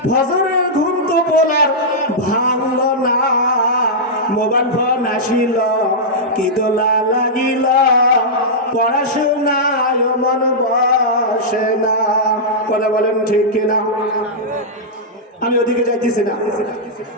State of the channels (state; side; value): normal; both; correlation -0.10